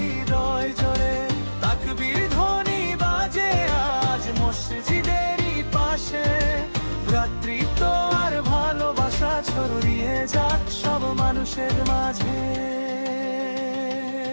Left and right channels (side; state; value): both; inverted; correlation -1.00